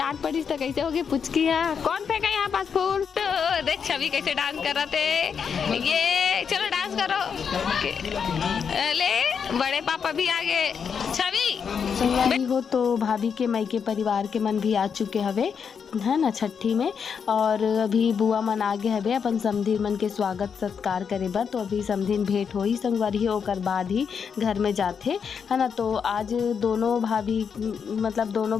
पड़ी तो कैसे होगी पुचकी है कौन फेंका यहाँ पास फूल। तो देख छवि कैसे डांस कर रहा थे, ये चलो डांस करो ले बड़े पापा भी आगे। छवि हो तो भाभी के मायके परिवार के मन भी आ चुके हवे है ना छठी में, और अभी बुआ मन आगे हवे अपन समधीन मन के स्वागत सत्कार करे बर। तो अभी समधीन भेंट होई संगवारी ओकर बाद ही घर में जाते है ना। तो आज दोनों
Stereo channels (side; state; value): right; quieter; 6.7 dB